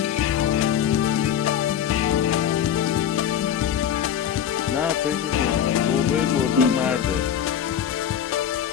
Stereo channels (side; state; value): right; quieter; 9.3 dB